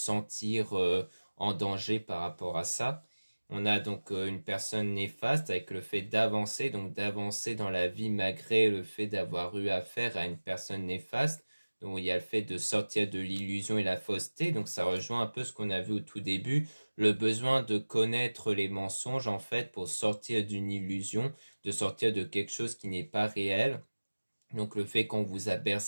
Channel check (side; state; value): both; inverted; correlation -1.00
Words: en danger par rapport à ça. On a donc une personne néfaste avec le fait d'avancer, donc d'avancer dans la vie malgré le fait d'avoir eu affaire à une personne néfaste. Donc il y a le fait de sortir de l'illusion et la fausseté. Donc ça rejoint un peu ce qu'on a vu au tout début, le besoin de connaître les mensonges en fait pour sortir d'une illusion, de sortir de quelque chose qui n'est pas réel. Donc le fait qu'on vous a